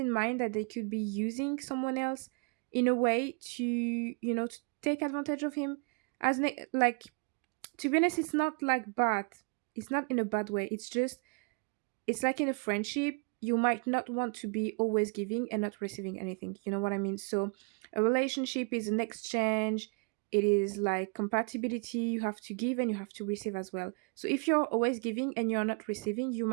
mind that they could be using someone else in a way to, to take advantage of him. Like, to be honest, it's not like bad. It's not in a bad way. It's like in a friendship, you might not want to be always giving and not receiving anything. You know what I mean? So a relationship is an exchange. It is like compatibility. You have to give and you have to receive as well. So if you're always giving and you're not receiving, you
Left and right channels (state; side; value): quieter; left; 34.9 dB